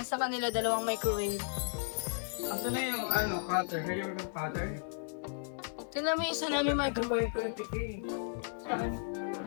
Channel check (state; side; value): silent; right; 55 dB below the other